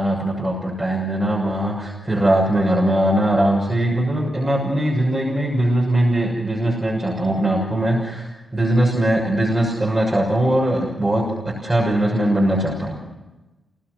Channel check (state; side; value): normal; both; correlation 0.86